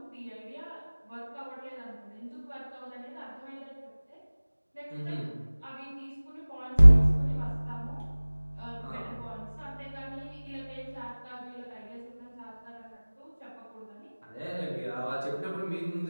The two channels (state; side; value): inverted; both; correlation -1.00